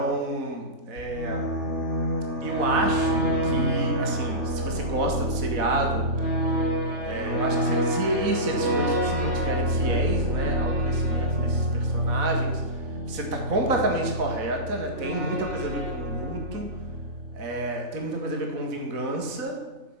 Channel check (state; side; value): late; left; 4.0 ms